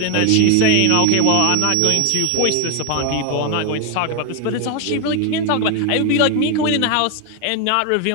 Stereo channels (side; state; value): both; different; correlation 0.01